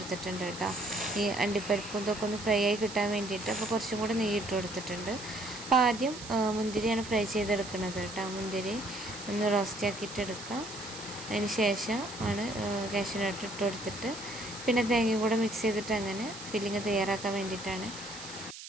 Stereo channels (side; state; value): right; noise; hiss, 12 dB below the sound